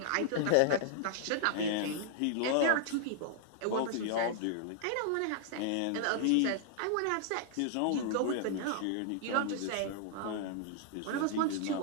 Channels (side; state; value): both; different; correlation -0.01